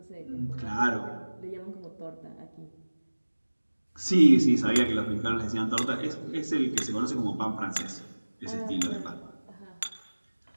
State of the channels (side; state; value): both; inverted; correlation -1.00